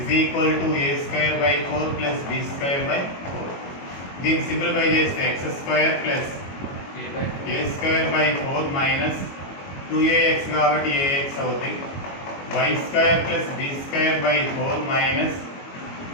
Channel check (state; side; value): late; right; 22 ms